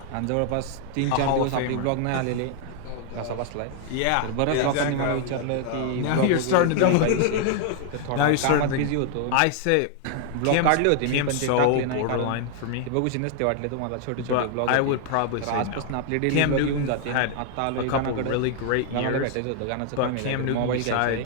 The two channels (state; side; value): different; both; correlation 0.00